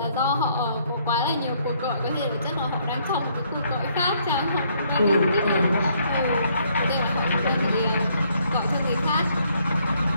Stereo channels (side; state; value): both; inverted; correlation -0.68